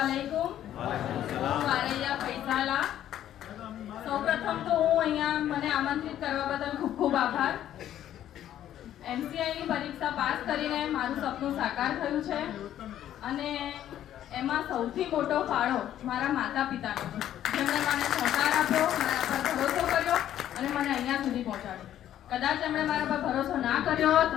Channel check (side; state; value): right; quieter; 11.6 dB